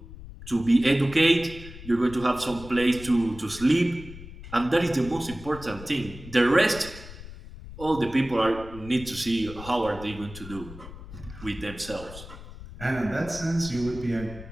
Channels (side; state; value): left; noise; rumble, 14 dB below the sound